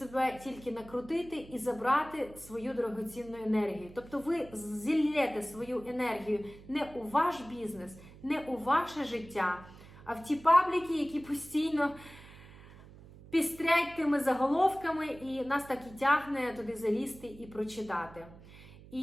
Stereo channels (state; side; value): noise; right; hum, 19 dB below the sound